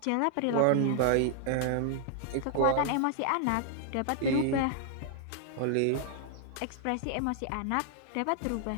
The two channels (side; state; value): both; different; correlation 0.00